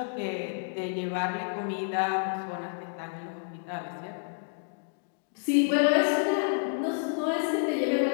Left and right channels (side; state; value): right; silent; digital silence